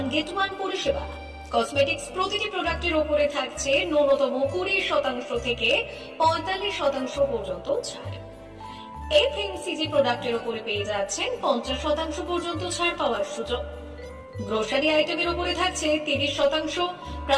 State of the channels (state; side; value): identical; both; correlation 1.00